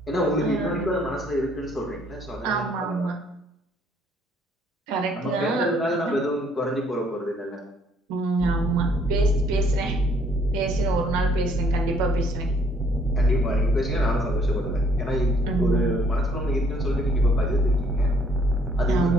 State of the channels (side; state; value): both; normal; correlation 0.63